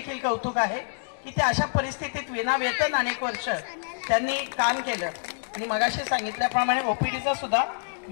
कौतुक आहे की ते अशा परिस्थितीत विनावेतन अनेक वर्ष त्यांनी काम केलं. आणि मगाशी सांगितल्याप्रमाणे ओपीडीचं सुद्धा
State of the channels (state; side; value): silent; right; digital silence